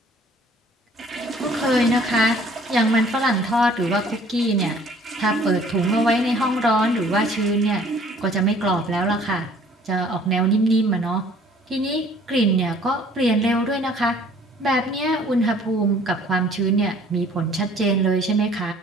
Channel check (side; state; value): both; normal; correlation 0.55